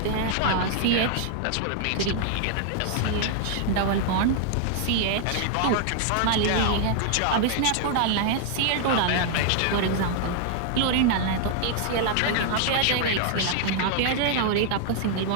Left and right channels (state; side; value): different; both; correlation 0.00